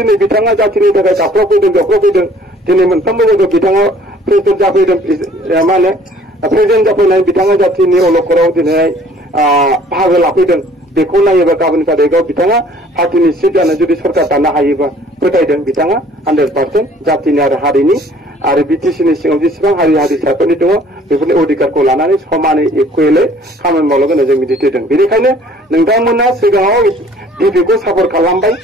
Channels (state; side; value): normal; both; correlation 0.55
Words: बिथाङा जातिनि थाखाय गाबख्रावफैदों दिनै मोनफ्रोमबो जायगायाव बिथाङा प्रेसिडेन्ट जाफैदों मा होनो प्रेसिडेन्ट जाफैनाय बिथाङा जातिनि अलखराव दिनै बाहागो लाफैदों। बेखौ नायोबा गाबोन तारिखआव बिथाङा पार्टिनि सिट जानो जुदि सरकार दानो हायोबा फोथायदों बिथाङा 100% जातिनि आरो हारिनि आरो बिटिसिनि सिङाव जेसेबां हारि हारिसाफोरनि दङ बेफोरनि अधिकारखौ लानानै समानै इकुवेलै खामानि मावलांगोन जों मिजिंथिदों। बेनिखायनो नोंथांमोना सिगाङाव एपिपिखौ सापर्ट खालामबाय